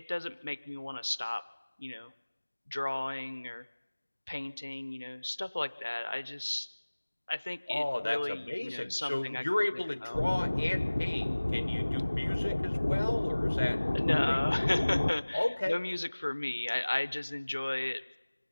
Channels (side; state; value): both; inverted; correlation -1.00